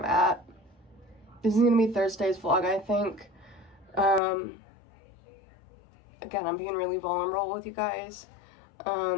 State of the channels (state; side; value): drops out; right; at 4.2 s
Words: at. This is gonna be Thursday's vlog, I think. Again, I'm being really vulnerable with you guys.